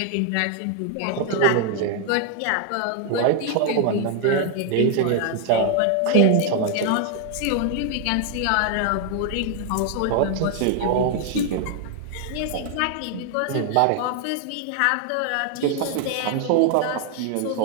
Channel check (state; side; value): different; both; correlation 0.00